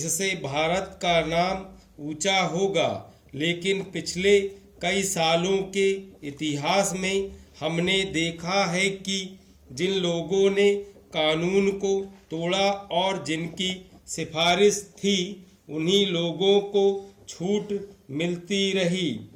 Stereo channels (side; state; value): both; identical; correlation 1.00